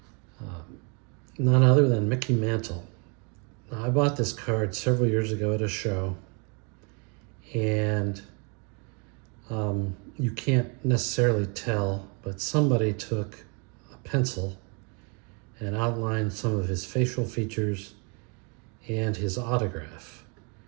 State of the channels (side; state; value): left; quieter; 34.9 dB